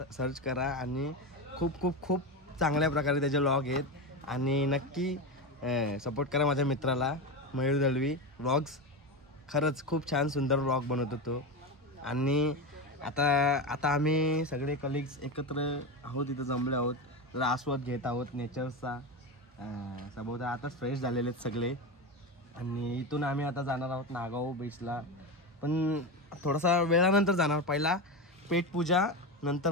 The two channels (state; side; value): normal; both; correlation 0.18